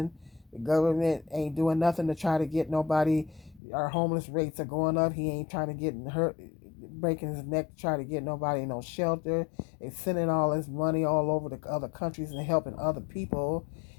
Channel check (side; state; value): right; drops out; at 3.6 s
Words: The government ain't doing nothing to try to get nobody. Our homeless rates are going up. He ain't trying to get hurt, breaking his neck to try to get nobody no shelter. They sending all this money all over the other countries and helping other people